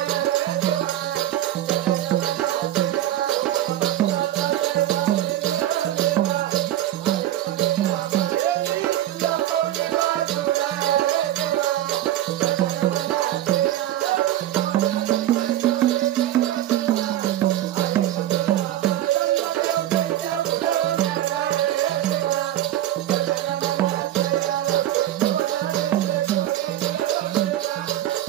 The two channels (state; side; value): quieter; left; 13.3 dB